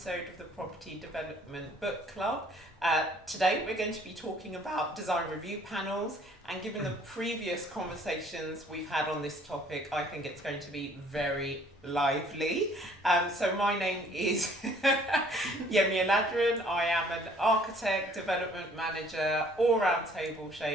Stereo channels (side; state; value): both; normal; correlation 0.58